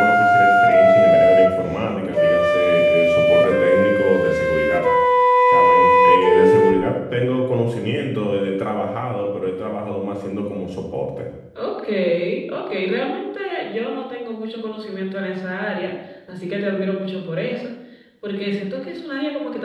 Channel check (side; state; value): both; identical; correlation 1.00